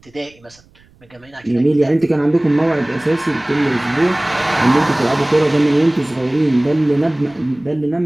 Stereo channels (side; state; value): right; noise; rumble, 30 dB below the sound